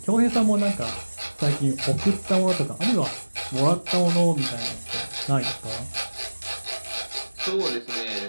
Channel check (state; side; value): inverted; both; correlation -1.00